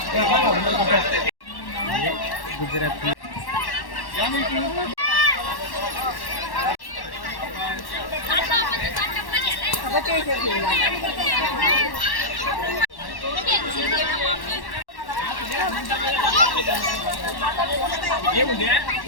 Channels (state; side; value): late; right; 1.1 ms